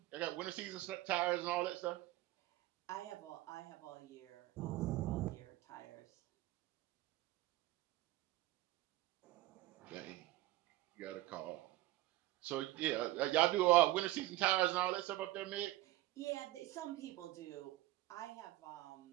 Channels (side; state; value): left; quieter; 17.3 dB